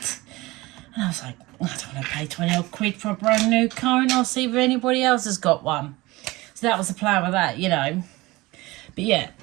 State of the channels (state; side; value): quieter; left; 20.8 dB